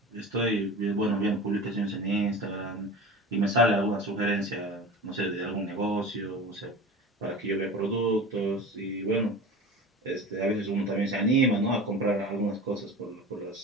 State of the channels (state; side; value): normal; both; correlation 0.34